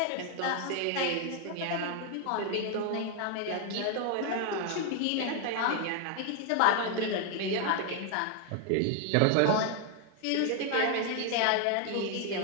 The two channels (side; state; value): both; different; correlation 0.01